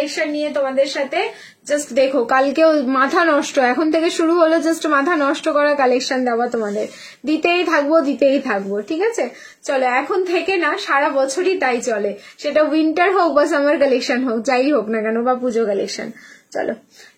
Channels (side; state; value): both; identical; correlation 1.00